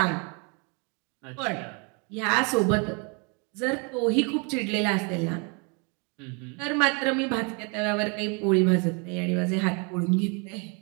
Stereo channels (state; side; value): quieter; left; 33.7 dB